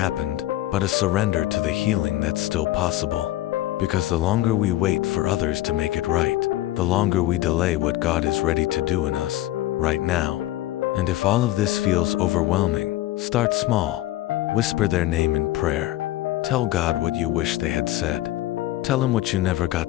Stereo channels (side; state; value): right; quieter; 15.3 dB